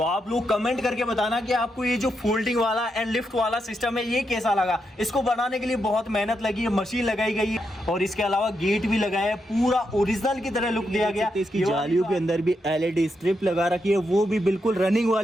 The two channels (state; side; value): normal; both; correlation 0.83